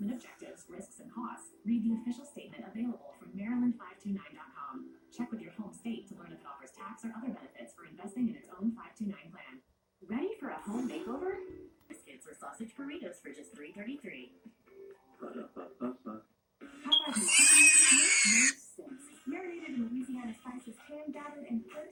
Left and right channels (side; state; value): both; identical; correlation 1.00